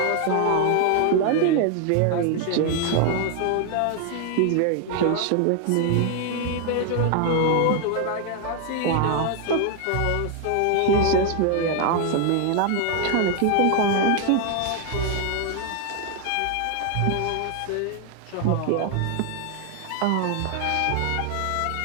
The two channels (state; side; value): different; both; correlation 0.00